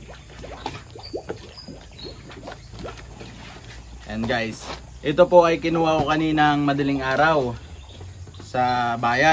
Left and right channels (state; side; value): identical; both; correlation 1.00